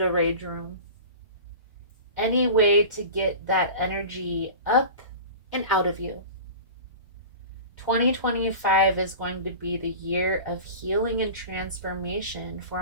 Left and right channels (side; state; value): both; inverted; correlation -0.35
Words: a rage room. Any way to get that energy up and out of you. 2025 is going to be the year of healing and transformation